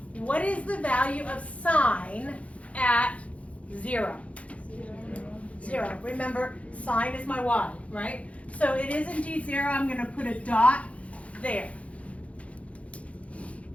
What is the value of sine at 0? 0. Remember, sine is my y, right? So it is indeed 0. I'm going to put a dot there.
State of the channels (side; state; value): right; late; 0.064 ms